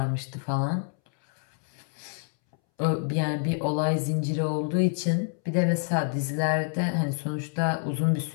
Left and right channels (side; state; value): right; silent; 60 dB below the other